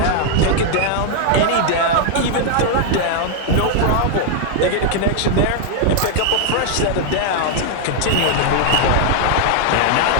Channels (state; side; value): different; both; correlation 0.00